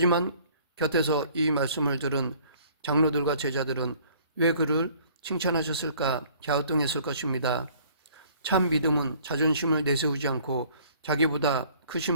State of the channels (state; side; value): inverted; both; correlation -0.56